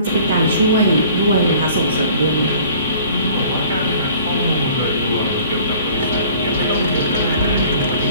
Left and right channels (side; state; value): both; inverted; correlation -0.50